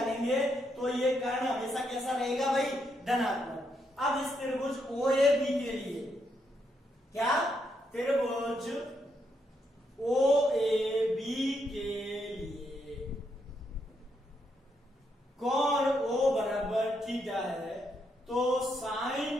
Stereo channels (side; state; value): both; normal; correlation 0.78